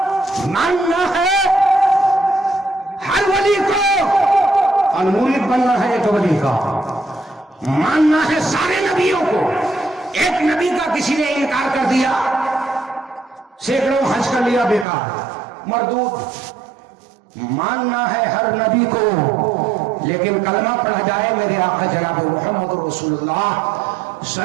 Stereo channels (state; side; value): drops out; left; at 14.9 s